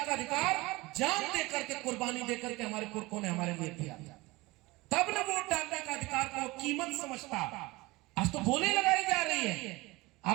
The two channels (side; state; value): left; quieter; 21.5 dB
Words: का अधिकार जान दे करके, कुर्बानी दे करके हमारे पुरखों ने हमारे लिए दिया। तब ना वोट डालने का अधिकार को कीमत समझता। आज तो बोली लगाई जा रही है।